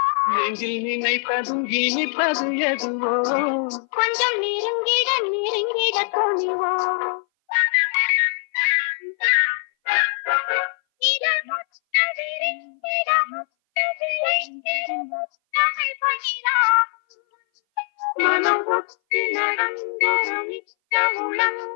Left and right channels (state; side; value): silent; right; 59 dB below the other